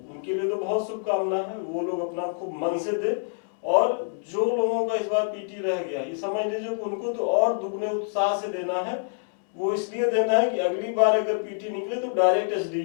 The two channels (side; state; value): right; silent; digital silence